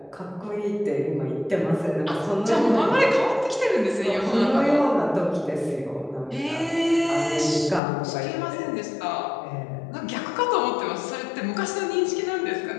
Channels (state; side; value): drops out; right; at 7.8 s